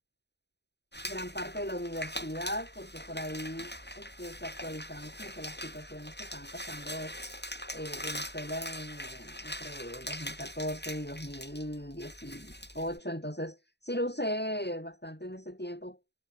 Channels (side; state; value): right; late; 0.49 ms